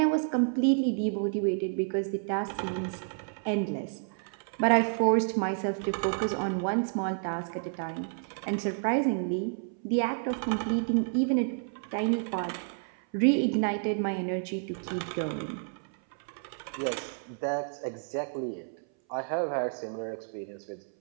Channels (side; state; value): left; silent; 58 dB below the other